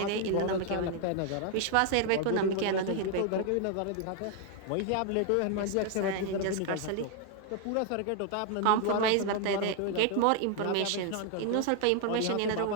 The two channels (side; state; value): both; different; correlation 0.00